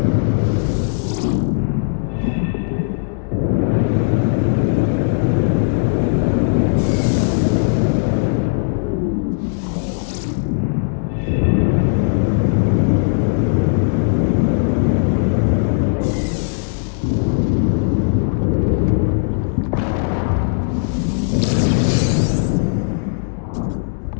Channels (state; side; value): silent; right; digital silence